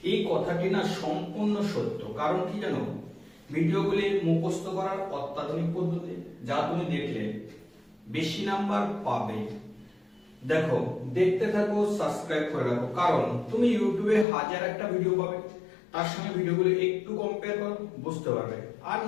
এই কথাটি না সম্পূর্ণ সত্য। কারণ কি জানো, ভিডিওগুলি মুখস্থ করার অত্যাধুনিক পদ্ধতি, যা তুমি দেখলে বেশি নাম্বার পাবে। দেখো, দেখতে থাকো, সাবস্ক্রাইব করে রাখো। কারণ তুমি ইউটিউবে হাজার একটা ভিডিও পাবে, তার সঙ্গে ভিডিওগুলো একটু কম্পেয়ার করো, বুঝতে পারবে। আর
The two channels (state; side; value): drops out; right; at 14.2 s